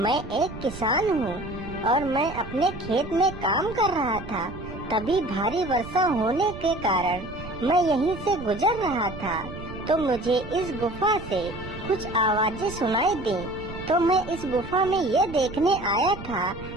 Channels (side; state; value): right; noise; rumble, 12 dB below the sound